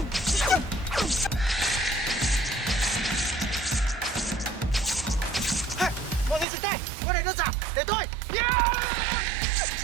Mọi người dừng tay. Cái này đơn giản. Để tôi.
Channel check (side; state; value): left; drops out; at 6.5 s